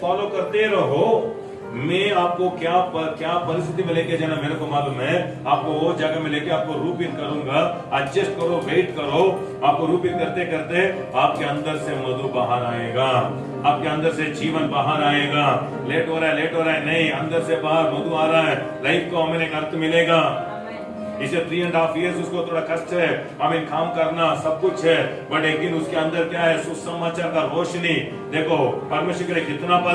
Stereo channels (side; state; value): both; identical; correlation 1.00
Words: करते रहो, मैं आपको क्या परिस्थिति में लेके जाना मेरे को मालूम है, आपको वो जगह में लेके आपको रूपित करूंगा। एडजस्ट करो, वेट करो, आपको रूपित करते करते आपके अंदर से मधु बाहर आएगा, आपके अंदर से जीवन बाहर आएगा। लेट हो रहा है नहीं, अंदर से बाहर मधु आ रहा है, लाइफ को हमें एक अर्थ मिलेगा। इसे 3.5 years उसको थोड़ा कष्ट है, हमें काम करना सब कुछ है, बट एक दिन उसके अंदर क्या है, सुसमाचार का रोशनी। देखो परमेश्वर ने कितना